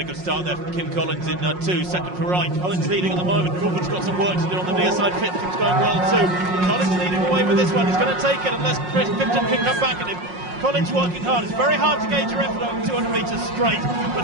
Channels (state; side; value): late; left; 5.5 ms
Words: good start there from Kim Collins in 2, second for right. Collins leading at the moment. Crawford's got some work to do on the near side. Fifton's going well too. Collins leading away with this one. He's going to take it unless Fifton can come back at him. Collins working hard. It's very hard to gauge your effort over 200 metres straight, but